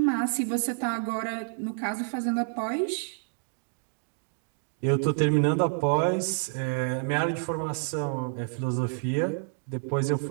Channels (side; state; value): left; silent; 59 dB below the other